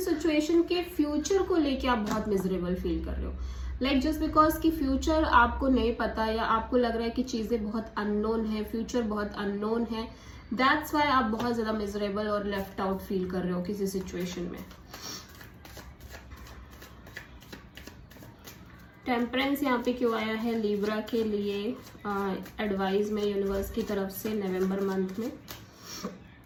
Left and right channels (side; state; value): both; identical; correlation 1.00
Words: सिचुएशन के फ्यूचर को लेके आप बहुत मिजरेबल फील कर रहे हो, लाइक जस्ट बिकॉज कि फ्यूचर आपको नहीं पता, या आपको लग रहा है कि चीजें बहुत अननोन है, फ्यूचर बहुत अननोन है, दैट्स वाई आप बहुत ज्यादा मिजरेबल और लेफ्ट आउट फील कर रहे हो किसी सिचुएशन में। टेम्परेंस यहाँ पे क्यों आया है लिब्रा के लिए एडवाइस में यूनिवर्स की तरफ से नवंबर मंथ में?